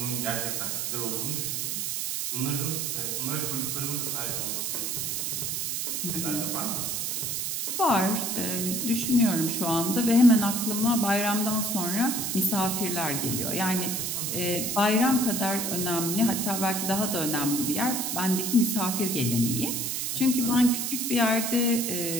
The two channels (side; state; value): right; noise; hiss, 1 dB below the sound